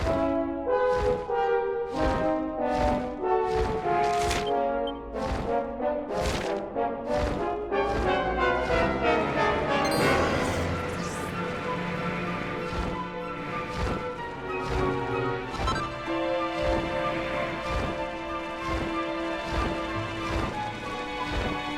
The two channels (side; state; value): both; identical; correlation 1.00